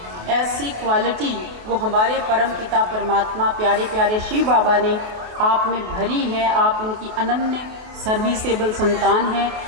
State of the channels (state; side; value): late; left; 28 ms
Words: ऐसी क्वालिटी वो हमारे परम पिता परमात्मा प्यारे प्यारे शिव बाबा ने आप में भरी है। आप उनकी अनन्य सर्विसेबल संतान हैं।